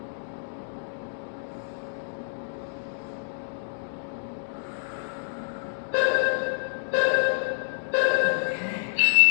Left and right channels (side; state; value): right; silent; digital silence